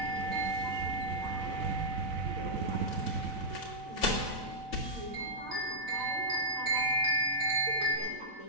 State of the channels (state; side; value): late; left; 4.0 ms